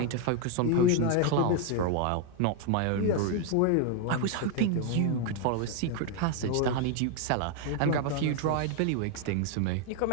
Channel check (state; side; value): different; both; correlation 0.01